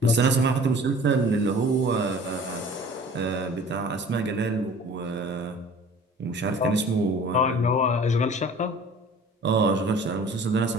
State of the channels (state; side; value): normal; both; correlation 0.46